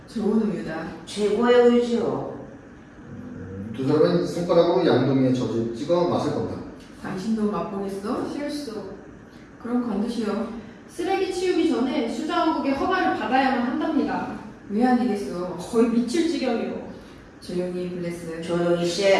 좋은 우유다. 최고의 우유지요. 두 사람은 손가락으로 양동이에 젖을 찍어 맛을 본다. 당신도 맛보겠어? 실수. 그럼 건드시오. 쓰레기 치우기 전에 수자원국의 허가를 받아야만 한답니다. 왜 아니겠어? 거의 미칠 지경이요. 조용히 블레스. 조용히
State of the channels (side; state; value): both; identical; correlation 1.00